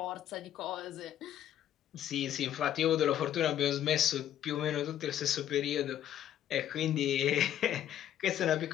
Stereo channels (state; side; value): quieter; right; 11.1 dB